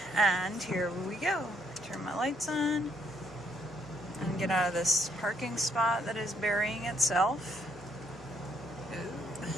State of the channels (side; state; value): both; normal; correlation 0.70